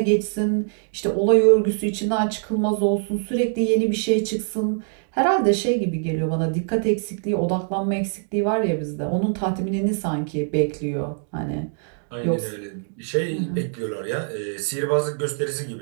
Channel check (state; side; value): silent; left; digital silence